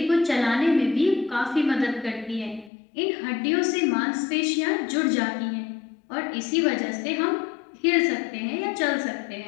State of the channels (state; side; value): drops out; right; at 2.7 s